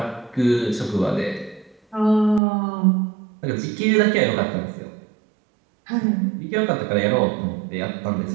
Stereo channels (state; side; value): drops out; left; at 2.4 s